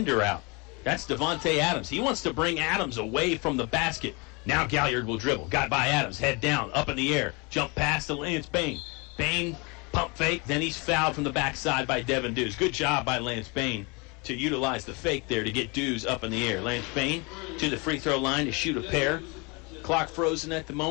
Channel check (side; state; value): right; quieter; 29.2 dB